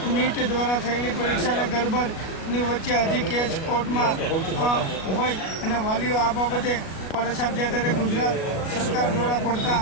નીટ દ્વારા થયેલી પરીક્ષાને ગડબડની વચ્ચે હજી કેસ કોર્ટમાં હોય અને વાલીઓ આ બાબતે પરેશાન છે। ત્યારે ગુજરાત સરકાર દ્વારા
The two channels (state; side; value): late; right; 37 ms